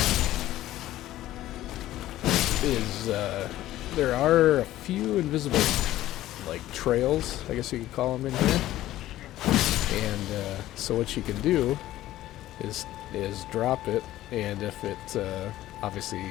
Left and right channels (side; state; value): right; quieter; 14.6 dB